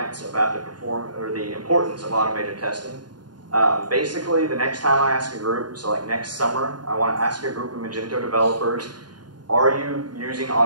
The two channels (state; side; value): late; left; 0.70 ms